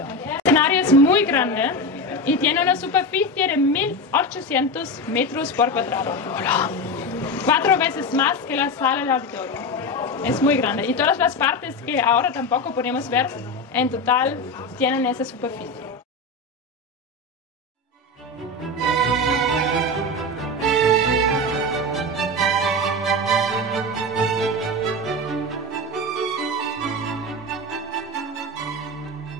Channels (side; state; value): both; normal; correlation 0.20